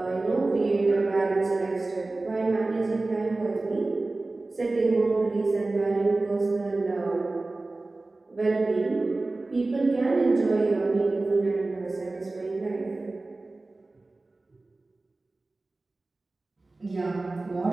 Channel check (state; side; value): quieter; left; 3.2 dB